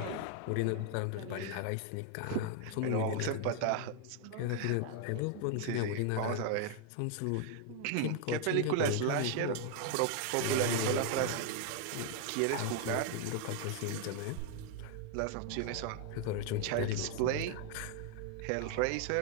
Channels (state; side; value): different; both; correlation 0.00